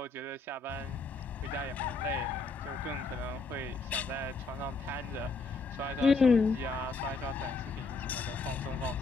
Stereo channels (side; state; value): right; quieter; 3.8 dB